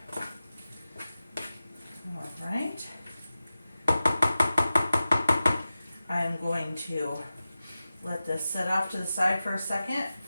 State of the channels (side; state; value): both; inverted; correlation -0.94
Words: Alright. I'm going to let this sit off to the side for a second,